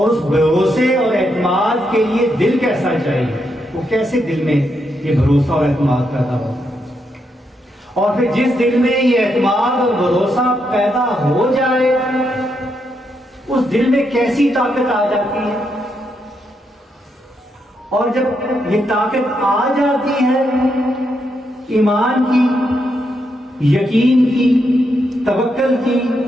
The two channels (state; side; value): normal; both; correlation 0.80